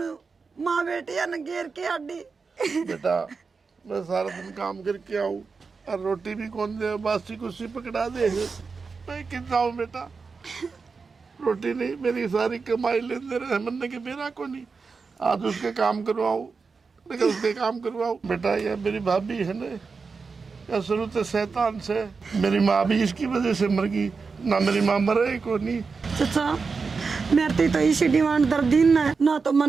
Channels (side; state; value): left; quieter; 4.8 dB